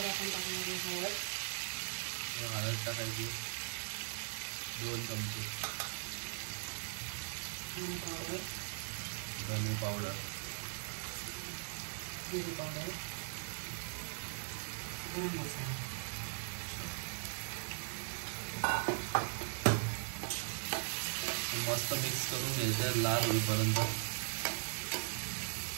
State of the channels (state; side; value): silent; left; digital silence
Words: आपण टाकणार हळद टाकायची 2 चमचे, धने पावडर, जिरे पावडर, गरम मसाला. मस्त मिक्स करून घ्यायचं लाल होईपर्यंत.